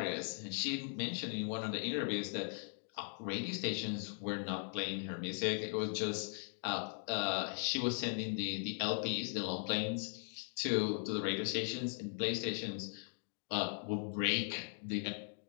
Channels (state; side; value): silent; right; 52 dB below the other